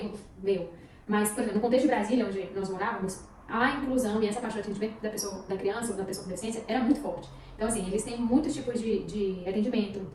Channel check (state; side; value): identical; both; correlation 1.00